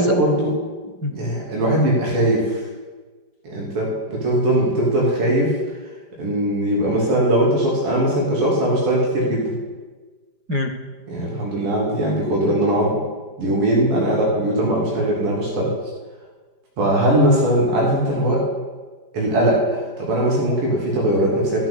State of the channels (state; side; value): late; left; 5.0 ms